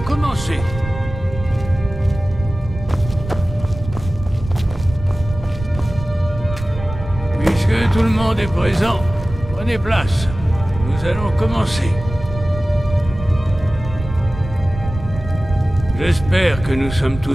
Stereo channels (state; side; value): noise; right; rumble, 10 dB below the sound